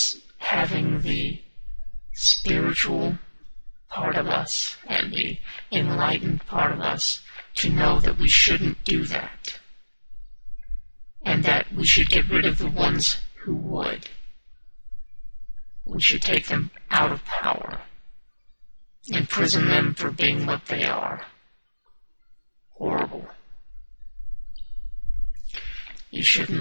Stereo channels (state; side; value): inverted; both; correlation -1.00